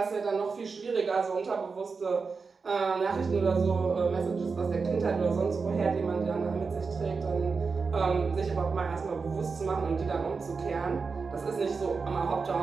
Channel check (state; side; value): quieter; left; 4.8 dB